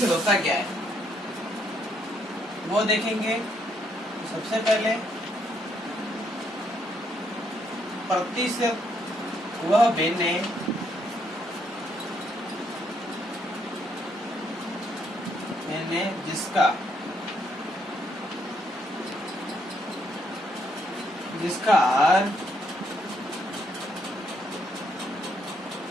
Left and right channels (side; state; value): both; normal; correlation 0.73